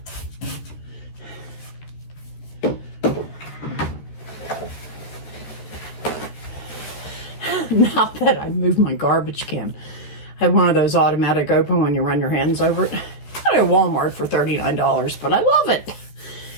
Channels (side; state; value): right; late; 14 ms